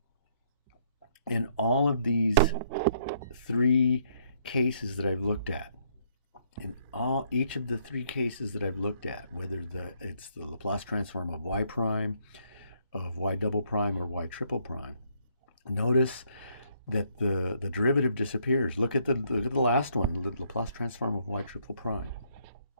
In all of these three cases that I've looked at, each of the three cases that I've looked at, whether it's the Laplace transform of y prime, of y double prime, or y triple prime, notice that the derivative disappears. Look at the last one, the Laplace transform of y triple prime.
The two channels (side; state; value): both; inverted; correlation -0.68